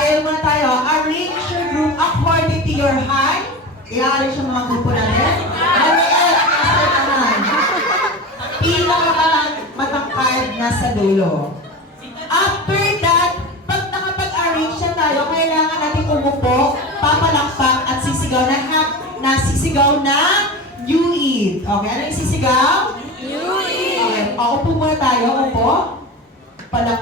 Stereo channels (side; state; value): both; normal; correlation 0.28